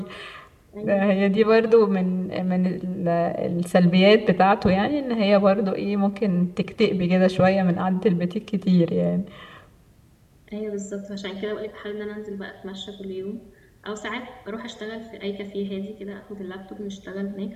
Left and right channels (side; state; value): both; identical; correlation 1.00